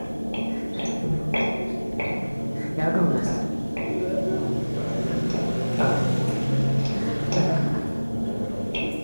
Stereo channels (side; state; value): both; inverted; correlation -1.00